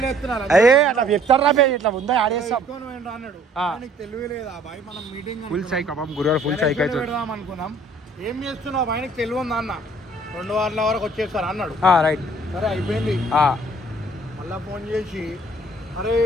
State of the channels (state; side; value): normal; both; correlation 0.58